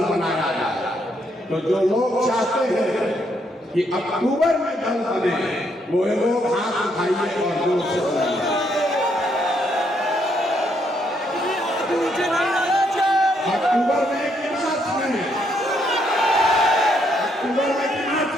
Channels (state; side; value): normal; both; correlation 0.74